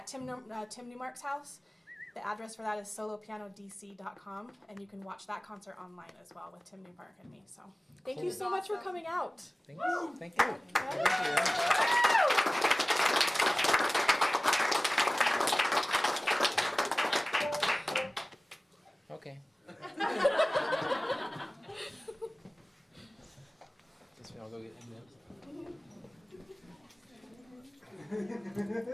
Tim Newmark's house. The address for that is solopianodc.com, and you can watch that concert online as well with Tim Newmark and me. So, thank you so much for coming out. Thank you. Thank you. Okay. Guess we all go get M&Ms.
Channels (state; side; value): normal; both; correlation 0.98